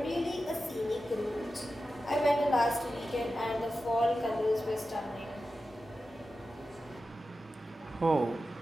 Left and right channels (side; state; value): both; normal; correlation 0.92